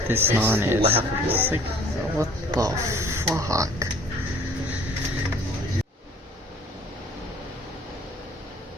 this naan is. It's like, what the fuck?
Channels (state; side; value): normal; both; correlation 0.53